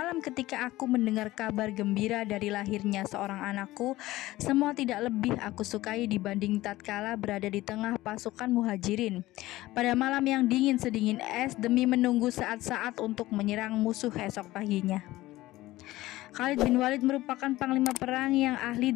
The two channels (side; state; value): right; quieter; 17.3 dB